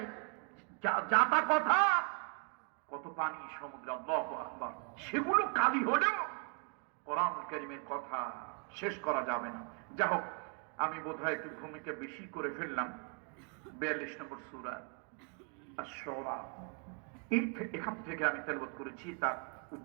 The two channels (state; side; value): quieter; left; 37.5 dB